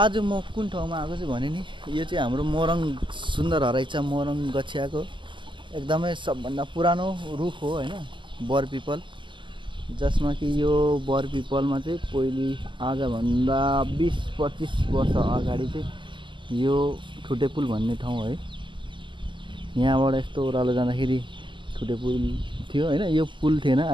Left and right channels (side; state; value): left; late; 0.23 ms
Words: म कुन ठाउँमा आएको छु भने नि, यो चाहिँ हाम्रो मोरङ सुन्दर हराइचा मोरङ गछियाको एकदमै सबभन्दा पुरानो रुख हो होइन, बर पिपल। जसमा कि यो बर पिपलमा चाहिँ पहिले आजभन्दा 20-25 वर्ष अगाडि चाहिँ यो ठुटे पुल भन्ने ठाउँ है, यहाँबाट यस्तो ओह्रालो जाँदाखेरि ठुटे पुल थियो होइन। यो पुल थिएन,